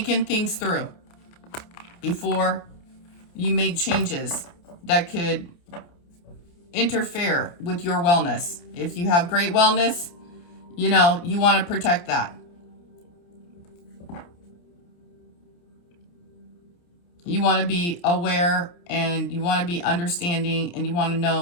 things through before you make changes that could interfere with your wellness. If you have great wellness, you know, you want to protect that. You want to be aware and you want to be understanding and you want to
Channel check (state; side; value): late; right; 29 ms